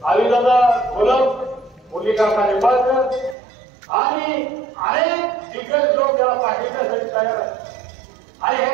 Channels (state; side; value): drops out; left; at 3.4 s